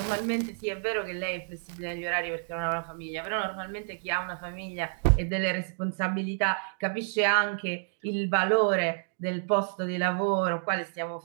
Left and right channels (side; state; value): left; silent; digital silence